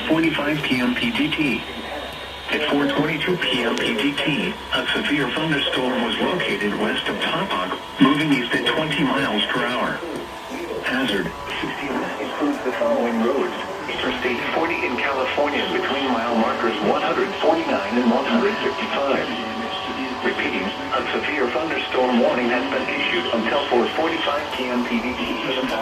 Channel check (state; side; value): identical; both; correlation 1.00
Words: p.m. PGT. At 4:22 p.m. PGT, a severe thunderstorm was located west of Tahoe, moving east at 20 miles per hour. Hazard, 60 includes the following roads. Interstate 40 in California between mile markers 149 and 155. Repeating, a severe thunderstorm warning has been issued until 4:45 p.m. PDT.